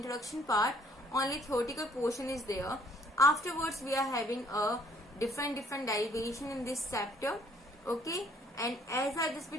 part, only theoretical portion is there. Afterwards, we are having a different derivation in this chapter. Okay, and as I just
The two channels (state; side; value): normal; both; correlation 0.63